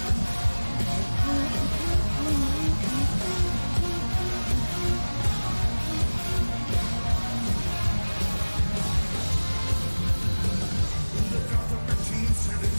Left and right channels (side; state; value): both; inverted; correlation -1.00